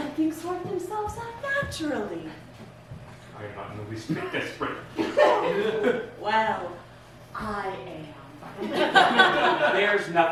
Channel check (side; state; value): both; identical; correlation 1.00